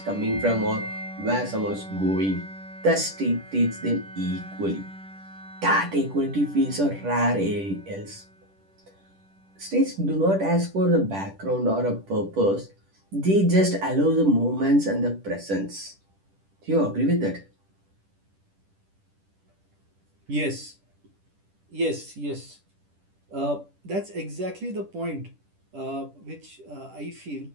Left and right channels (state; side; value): late; left; 10 ms